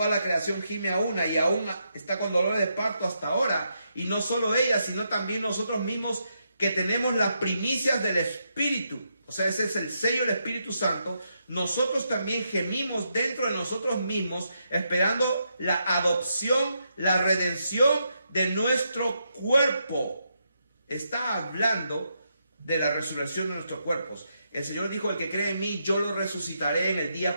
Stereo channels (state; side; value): inverted; both; correlation -0.81